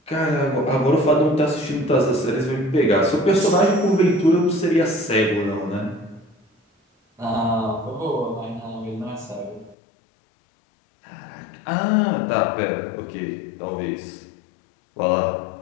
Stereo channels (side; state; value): right; drops out; at 9.8 s